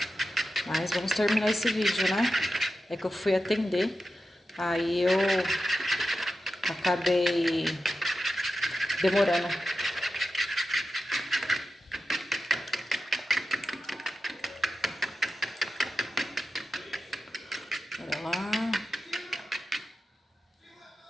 Mas vamos terminar esse vídeo, né? É que eu fui atender, aí eu acabei demorando. Bora lá.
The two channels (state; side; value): normal; both; correlation 0.92